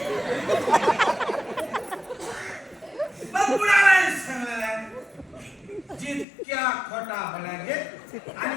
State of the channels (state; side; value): drops out; right; at 6.2 s